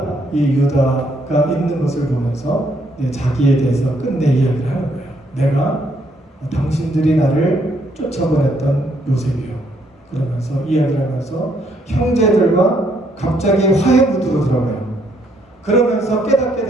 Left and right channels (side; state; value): both; normal; correlation 0.70